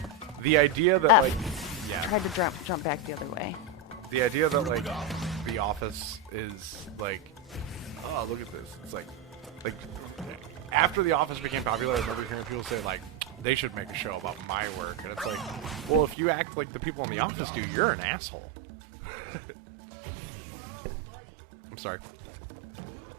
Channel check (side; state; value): left; drops out; at 16.2 s